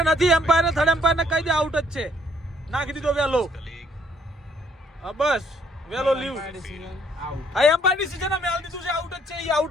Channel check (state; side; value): normal; both; correlation 0.66